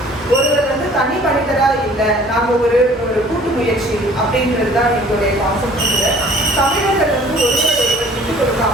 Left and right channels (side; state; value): both; normal; correlation 0.51